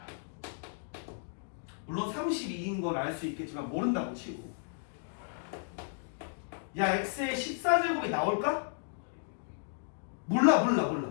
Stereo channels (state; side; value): silent; right; digital silence